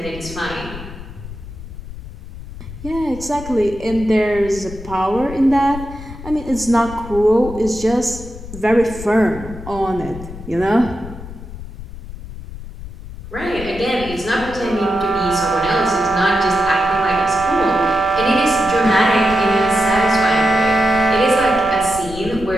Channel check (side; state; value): left; noise; rumble, 12 dB below the sound